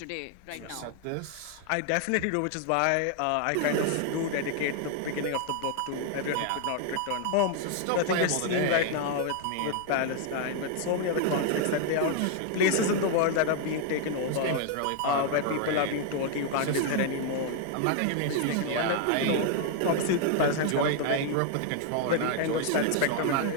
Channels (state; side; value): different; both; correlation 0.00